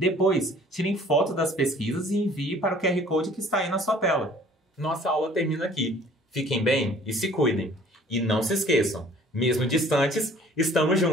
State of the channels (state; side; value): normal; both; correlation 0.53